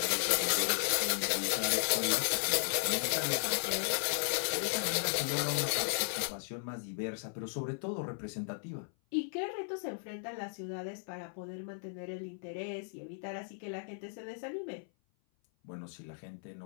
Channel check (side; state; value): right; silent; 54 dB below the other